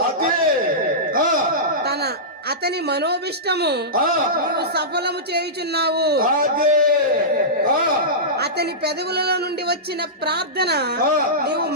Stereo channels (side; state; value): both; normal; correlation -0.16